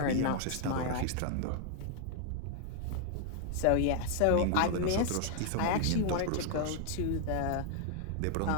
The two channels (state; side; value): different; both; correlation 0.00